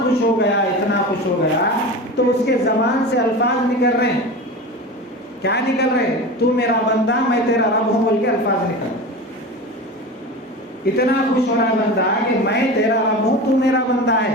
ہو گیا تو اس کے زبان سے الفاظ نکل رہے ہیں، کیا نکل رہے ہیں؟ تو میرا بندہ، میں تیرا رب ہوں، بول کے الفاظ نکل۔ اتنا خوش ہو رہا بندہ کہ میں تیرا رب ہوں، تو میرا بندہ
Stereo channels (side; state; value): both; normal; correlation 0.29